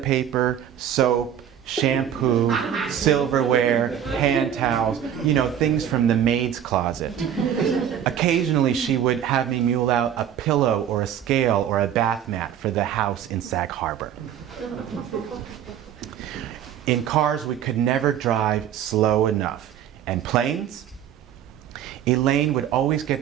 paper, soap, shampoo, silverware, hand towels, things from the maid's closet. Occasionally, she would have me mule out a pillow or a scale or a bath mat for the house in Sag Harbor. In cars, we could never drive slow enough. And planes? Elaine would always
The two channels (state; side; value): quieter; left; 9.6 dB